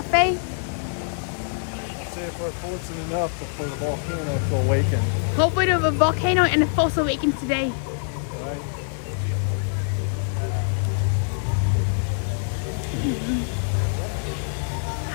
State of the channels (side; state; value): right; silent; digital silence